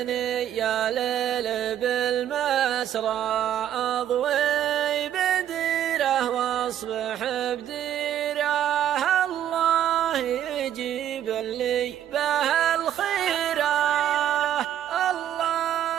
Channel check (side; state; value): left; quieter; 10.8 dB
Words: يا ليل بالمسرى أضوي بديره واصبح بديره، الله يجيب لي به الخيره،